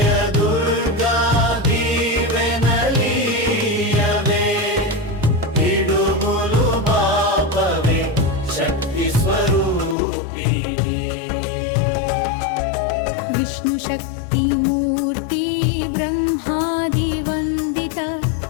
దుర్గా దీవెనలీయవే, పిడుగులు బాపవే శక్తి స్వరూపిణి. విష్ణు శక్తి మూర్తి బ్రహ్మాది వందిత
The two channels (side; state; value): right; drops out; at 10.0 s